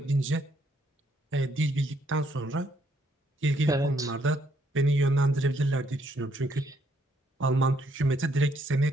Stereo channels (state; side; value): normal; both; correlation 0.71